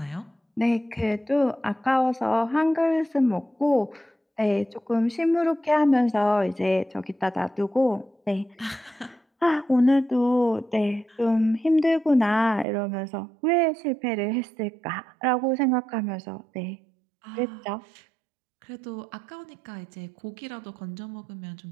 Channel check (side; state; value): left; drops out; at 12.7 s